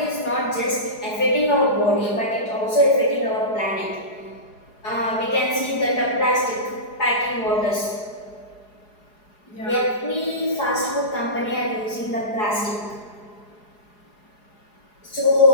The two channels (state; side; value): late; right; 4.8 ms